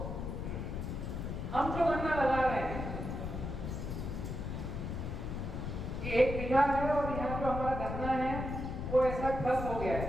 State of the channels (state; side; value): noise; left; rumble, 4 dB below the sound